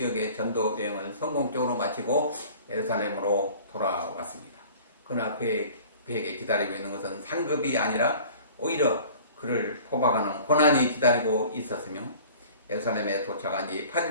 전도 여행을 성공적으로 마치고 예루살렘으로 돌아왔습니다. 그러나 그에게 기다리고 있는 것은 상급이 아니라 오히려 그를 포박하는 고난이 기다리고 있었으며 예루살렘에 도착한 지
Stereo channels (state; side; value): inverted; both; correlation -0.46